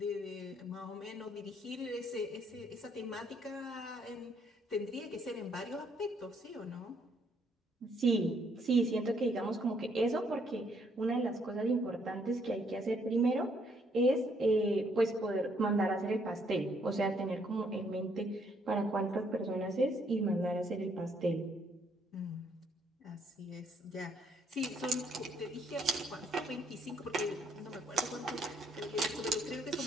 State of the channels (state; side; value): normal; both; correlation 0.70